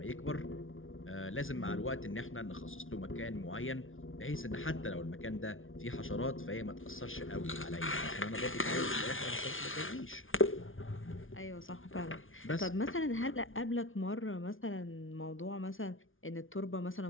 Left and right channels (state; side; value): late; right; 0.58 ms